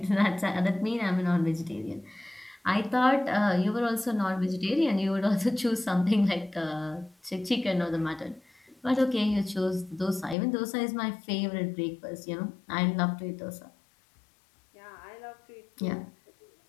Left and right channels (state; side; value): drops out; right; at 10.4 s